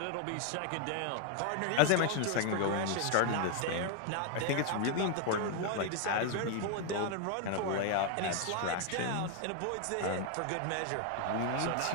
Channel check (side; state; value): both; different; correlation 0.00